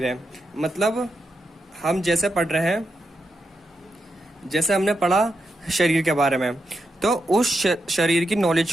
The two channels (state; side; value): normal; both; correlation 0.85